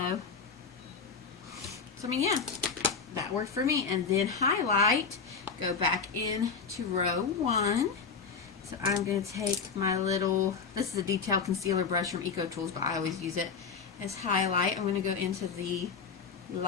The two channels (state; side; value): quieter; right; 5.5 dB